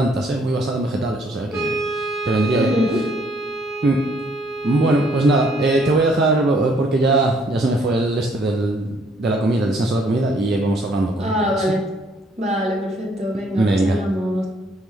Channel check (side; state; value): both; normal; correlation 0.65